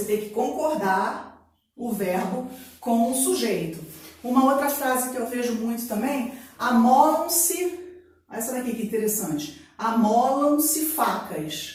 tem que concordar o verbo com o sujeito. Uma outra frase que eu vejo muito também, amolam-se, olha essa daqui que interessante, amolam-se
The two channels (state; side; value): identical; both; correlation 1.00